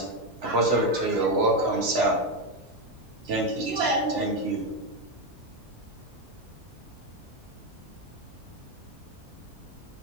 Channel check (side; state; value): both; normal; correlation 0.09